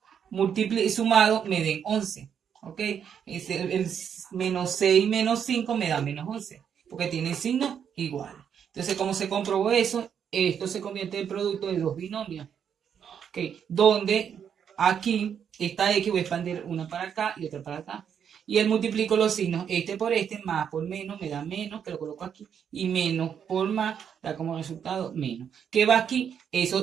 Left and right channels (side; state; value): left; quieter; 8.0 dB